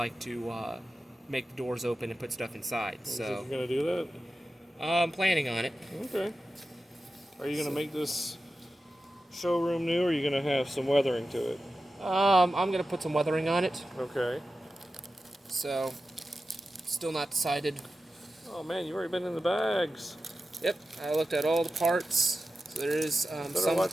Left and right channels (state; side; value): normal; both; correlation 0.93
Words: to make the doors open and put stuff inside. So you're gonna do that? I'm planning on it. Okay. Are you gonna make this showroom new, or are you gonna have some weathering to it? I'm gonna put some weathering on it. Okay. So, still not decided. Oh man, you've already been in the bags. Yep, I looked at all the parts. So there is